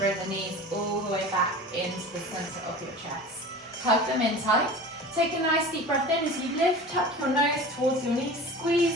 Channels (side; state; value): both; normal; correlation 0.36